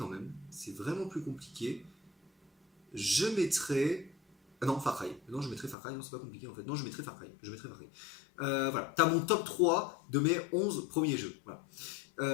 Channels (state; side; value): drops out; right; at 5.8 s